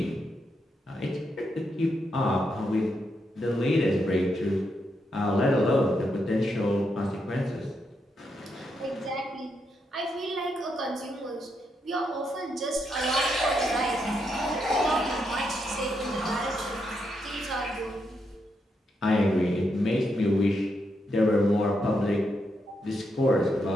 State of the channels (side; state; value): both; normal; correlation 0.81